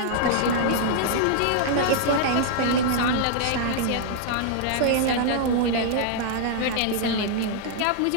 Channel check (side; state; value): both; different; correlation -0.01